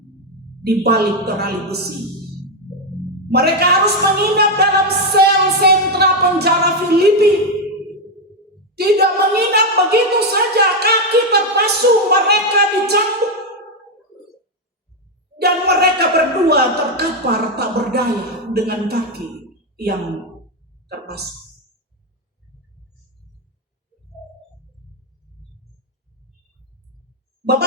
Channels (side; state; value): both; normal; correlation 0.05